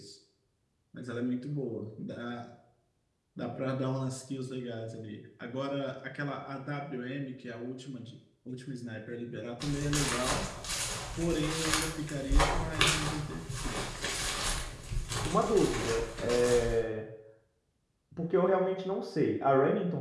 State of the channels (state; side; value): identical; both; correlation 1.00